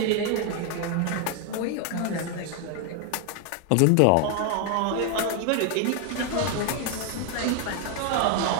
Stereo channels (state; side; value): different; both; correlation 0.01